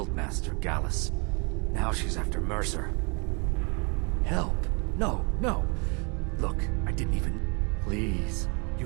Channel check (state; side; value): quieter; left; 33.0 dB